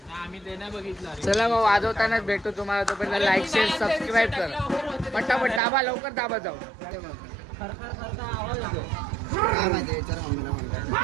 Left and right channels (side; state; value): left; drops out; at 5.6 s